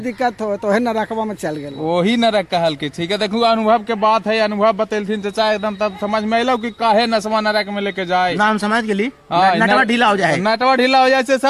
हो तो है नरकवा में चल गए। वही नरक कहल के। ठीक है देखू अनुभव के बात है, अनुभव बतेलथिन चाचा एकदम तब समझ में अलो कि काहे नसवा नरक में लेके जाए। नाम समझ गेली। हाँ, नटवा ढीला हो जाए, नटवा ढीला हो जाए से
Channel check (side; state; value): both; identical; correlation 1.00